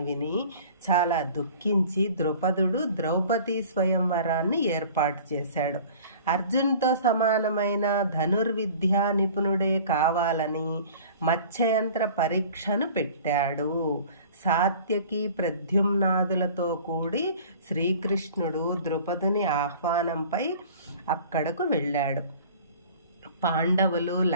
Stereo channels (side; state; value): both; inverted; correlation -0.45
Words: విని చాలా దుఃఖించి ద్రుపదుడు ద్రౌపది స్వయంవరాన్ని ఏర్పాటు చేశాడు. అర్జున్తో సమానమైన ధనుర్విద్యా నిపుణుడే కావాలని మత్స్యయంత్ర పరీక్షను పెట్టాడు. సాత్యకి, ప్రద్యుమ్నాదులతో కూడి శ్రీకృష్ణుడు ద్రుపదుని ఆహ్వానంపై అక్కడకు వెళ్ళాడు. పాండవులు